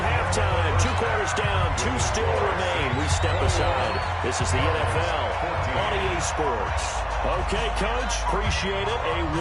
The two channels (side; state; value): both; identical; correlation 1.00